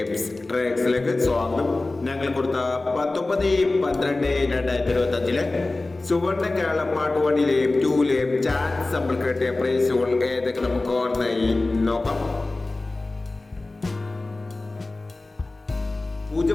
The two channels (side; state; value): right; quieter; 3.1 dB